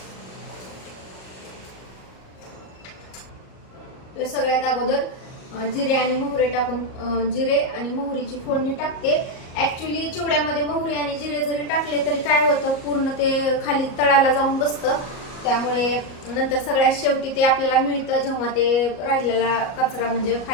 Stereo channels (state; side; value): late; right; 38 ms